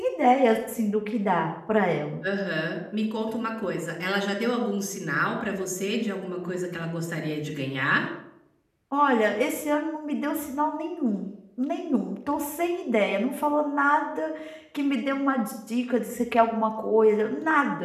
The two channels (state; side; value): identical; both; correlation 1.00